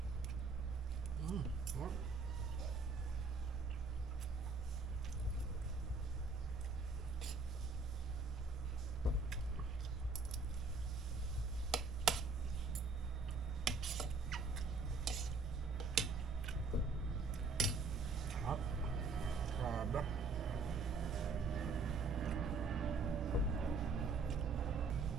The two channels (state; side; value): quieter; left; 4.0 dB